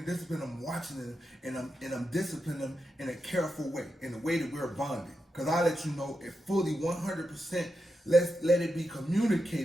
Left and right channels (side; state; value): both; normal; correlation 0.87